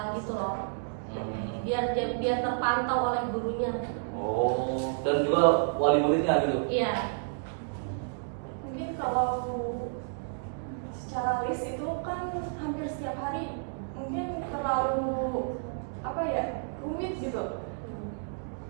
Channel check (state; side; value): silent; left; digital silence